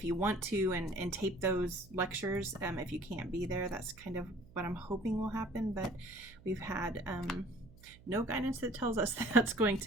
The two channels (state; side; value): noise; right; hum, 23 dB below the sound